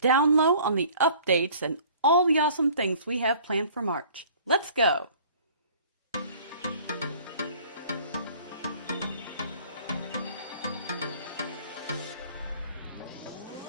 low on the updates and all the awesome things we have planned for March. Let's go!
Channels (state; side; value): inverted; both; correlation -0.51